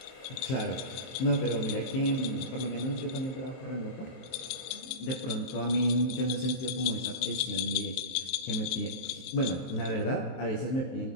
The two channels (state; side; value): late; right; 24 ms